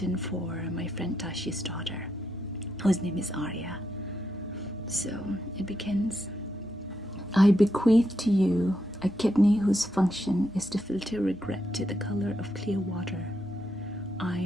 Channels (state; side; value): noise; left; hum, 25 dB below the sound